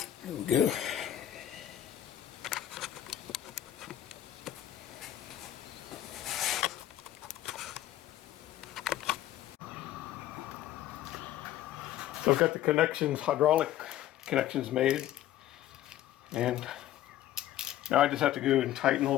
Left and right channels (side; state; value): right; quieter; 12.8 dB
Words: There we go. So I've got the connections, hydraulic connections made, and now I just have to go and tighten all